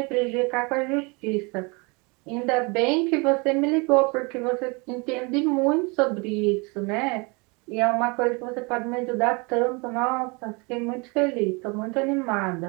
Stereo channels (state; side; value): quieter; left; 29.6 dB